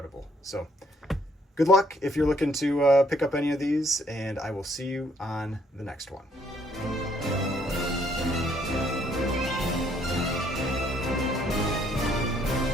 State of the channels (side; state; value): both; normal; correlation 0.67